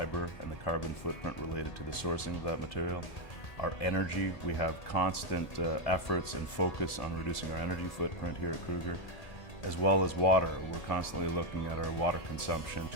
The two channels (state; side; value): late; right; 2.2 ms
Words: and the carbon footprint related to the sourcing of that material. Our energy, we have constant efforts and focus on reducing our energy footprint here at Kruger, as well as water. We're constantly looking at our water consumption